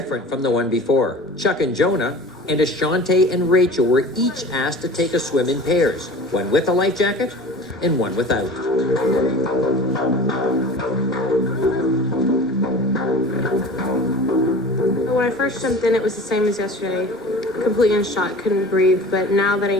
from the one before. Chuck and Jonah and Ashante and Rachel were each asked to take a swim in pairs, one with a life jacket and one without. When I first jumped in, it was the same as yesterday. Completely in shock, couldn't breathe, but now that I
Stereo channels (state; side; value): normal; both; correlation 0.39